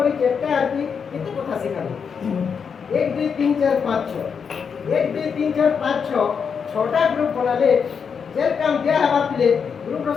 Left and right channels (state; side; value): quieter; right; 6.4 dB